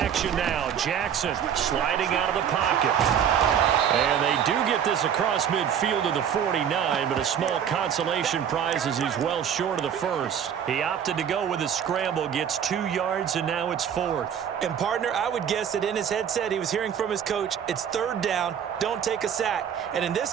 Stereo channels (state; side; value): quieter; left; 8.6 dB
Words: action now. Jackson sliding out of the pocket. And they do get this across midfield to the 49, but a small consolation prize as he's well short of the first. He opted to go with a scramble, gets 2 yards, and now it's 4th. And partner, I would guess that in his headset he was hearing from his coach, it's 3rd down, don't take a sack. And in this